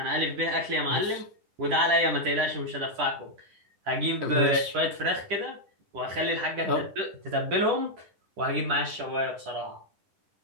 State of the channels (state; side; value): late; left; 10 ms